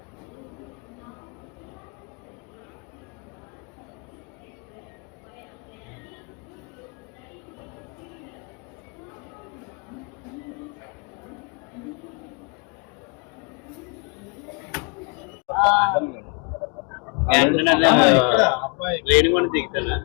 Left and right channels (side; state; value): right; quieter; 36.1 dB